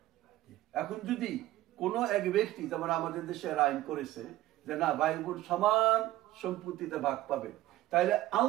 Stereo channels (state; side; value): quieter; left; 15.6 dB